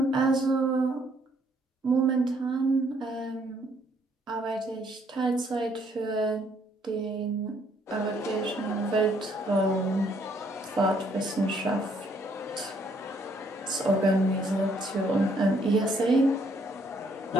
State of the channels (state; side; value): normal; both; correlation 0.67